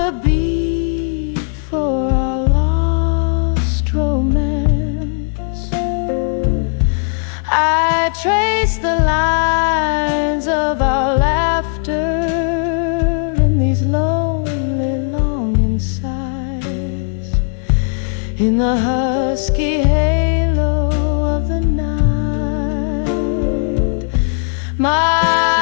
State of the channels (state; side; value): silent; right; 56 dB below the other